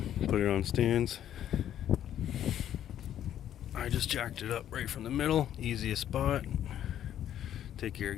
put it on stands. I just jacked it up right from the middle, easiest spot. Take your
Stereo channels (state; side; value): quieter; right; 10.9 dB